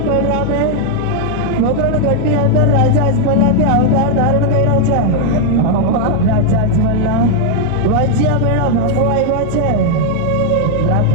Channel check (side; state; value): both; different; correlation 0.00